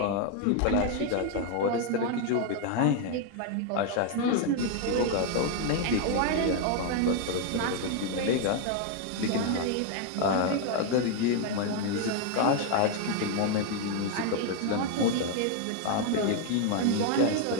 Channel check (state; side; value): different; both; correlation 0.01